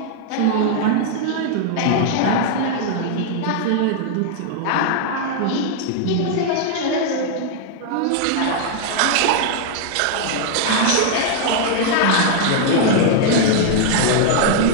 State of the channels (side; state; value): both; different; correlation 0.00